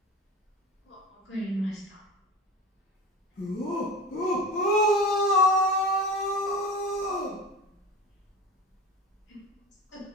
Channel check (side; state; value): both; normal; correlation 0.32